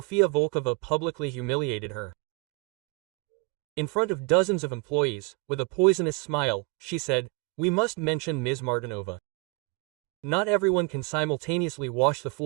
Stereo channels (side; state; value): left; quieter; 26.6 dB